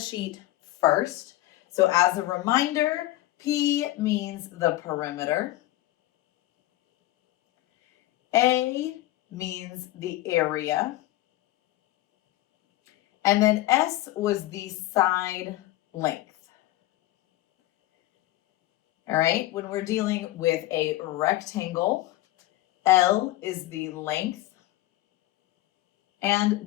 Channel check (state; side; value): quieter; right; 16.6 dB